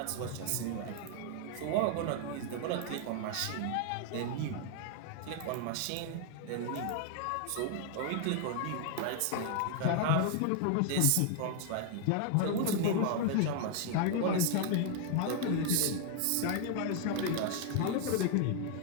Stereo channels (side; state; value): both; different; correlation 0.00